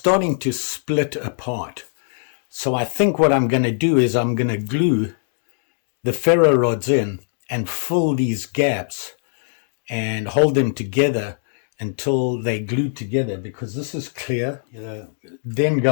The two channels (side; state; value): right; silent; digital silence